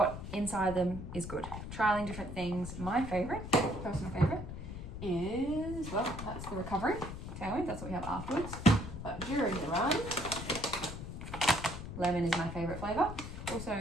inside them is good. Trialing different things. My favorite, personal favorite, is, well, that's the recovery tailwind. That's what we have afterwards. But during the run, lemon is my favorite flavor.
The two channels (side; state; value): left; noise; rumble, 8 dB below the sound